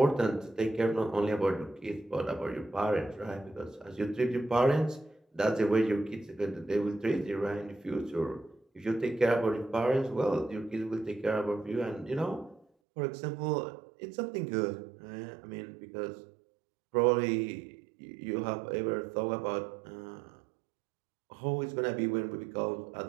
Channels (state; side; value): drops out; left; at 12.7 s